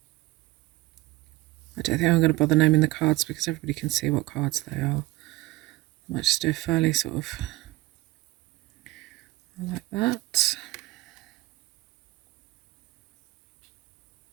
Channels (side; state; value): left; quieter; 18.9 dB